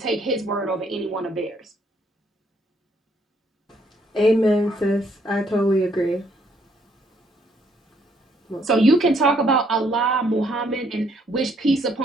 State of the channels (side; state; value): both; normal; correlation 0.69